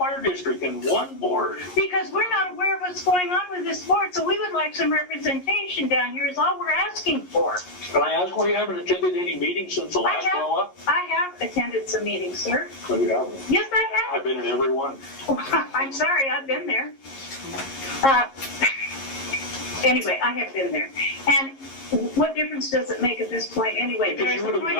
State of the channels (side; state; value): right; late; 11 ms